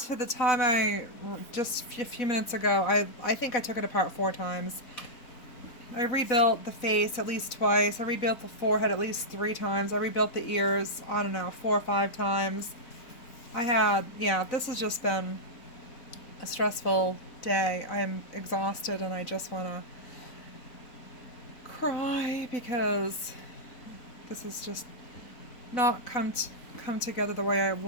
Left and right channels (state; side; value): late; right; 4.0 ms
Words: to the time just a few minutes ago. I think I took it apart 4 times. I rebuilt the face at least twice. I rebuilt the forehead at least 3 times. I rebuilt the ears, I don't know, 4 or 5 times. Yeah, this has just been a stressful day. I am exhausted and I just want to cry because this has just not come together the way I